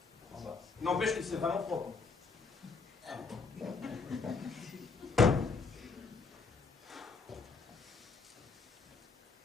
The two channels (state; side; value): quieter; right; 4.5 dB